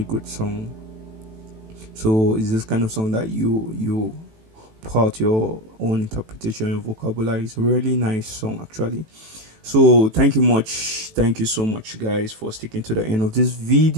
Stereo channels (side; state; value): left; late; 18 ms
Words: good song. So it's this kind of song that you pour out your own interpretation, your vocabulary. It's a really nice song actually. So thank you so much guys for sticking to the end of this